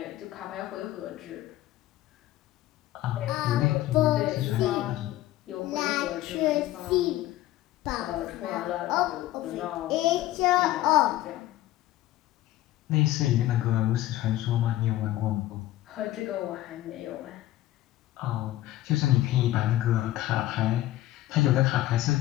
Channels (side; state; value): right; quieter; 15.1 dB